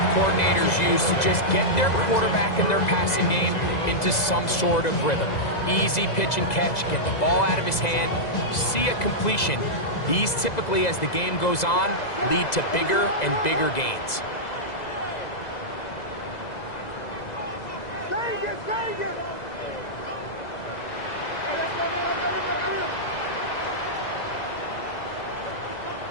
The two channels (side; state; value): right; late; 2.0 ms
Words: coordinators use to just get their quarterback and their passing game into some sort of rhythm. Easy pitch and catch, get the ball out of his hand, see a completion. These typically, as the game goes on, lead to bigger and bigger gains.